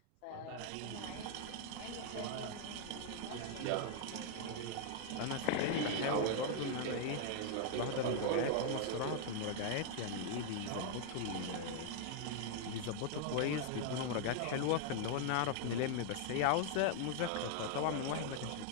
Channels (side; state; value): both; different; correlation 0.00